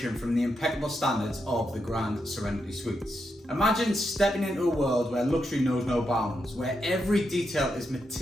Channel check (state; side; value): normal; both; correlation 0.84